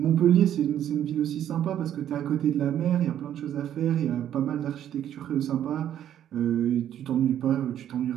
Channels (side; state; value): left; quieter; 10.7 dB